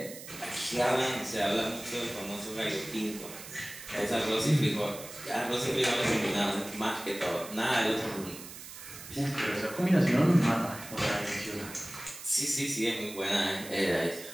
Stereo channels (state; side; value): noise; right; hiss, 13 dB below the sound